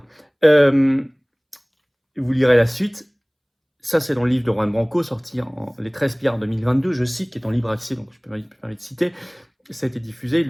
Vous lirez la suite. Ça, c'est dans le livre de Juan Branco, sorti en les 13 pillards 2022, je cite, qui est en libre accès, donc je peux me permettre de citer. Ça a été diffusé, il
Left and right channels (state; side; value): identical; both; correlation 1.00